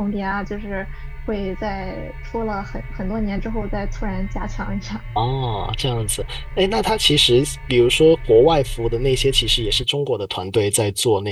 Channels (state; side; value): identical; both; correlation 1.00